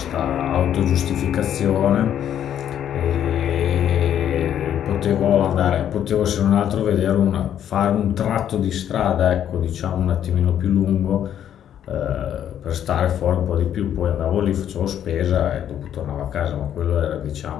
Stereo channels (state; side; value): quieter; right; 10.1 dB